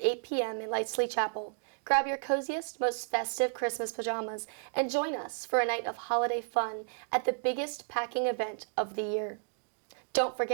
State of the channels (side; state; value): left; silent; digital silence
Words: 8 p.m. in Lightsley Chapel. Grab your coziest, most festive Christmas pajamas and join us for a night of holiday fun at the biggest packing event of the year. Don't